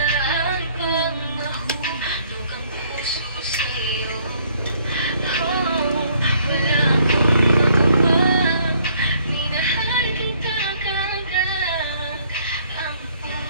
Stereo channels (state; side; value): inverted; both; correlation -0.64